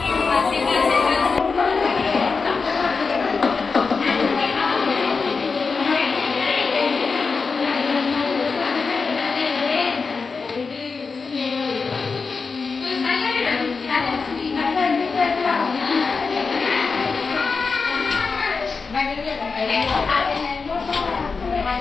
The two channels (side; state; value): right; quieter; 4.7 dB